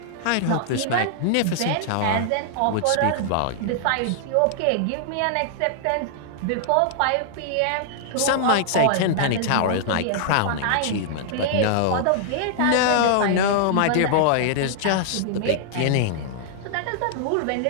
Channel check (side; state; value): both; different; correlation -0.01